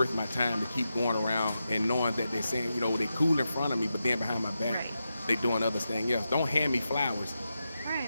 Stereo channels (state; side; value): inverted; both; correlation -0.89